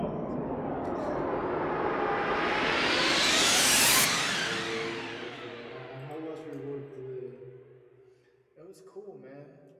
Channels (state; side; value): identical; both; correlation 1.00